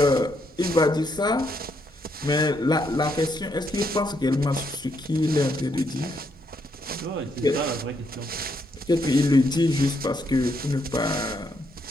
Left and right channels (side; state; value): both; normal; correlation 0.76